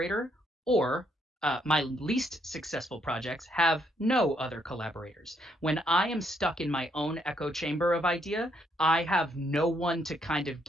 or My least successful projects have no other collaborators. When I am stuck in my own echo chamber of idea, I have no one to kind of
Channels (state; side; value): normal; both; correlation 0.73